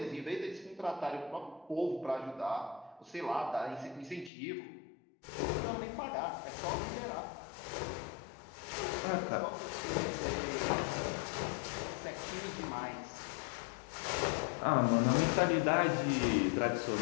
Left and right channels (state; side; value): drops out; right; at 4.3 s